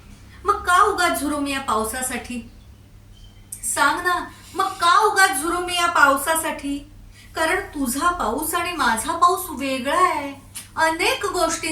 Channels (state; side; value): identical; both; correlation 1.00